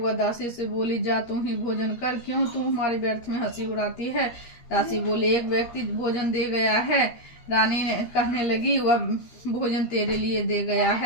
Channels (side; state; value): right; late; 13 ms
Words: दासी से बोली, जा तू ही भोजन कर, क्यों तू हमारे व्यर्थ में हंसी उड़ाती है? दासी बोली, एक व्यक्ति भोजन दे गया है। रानी ने कहने लगी, वह भोजन तेरे लिए दे गया